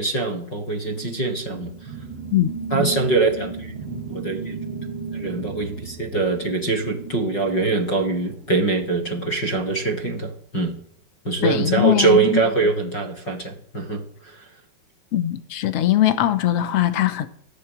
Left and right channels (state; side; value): late; right; 5.4 ms